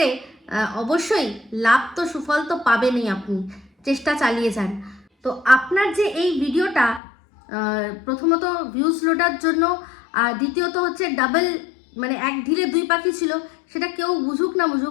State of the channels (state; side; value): drops out; right; at 7.0 s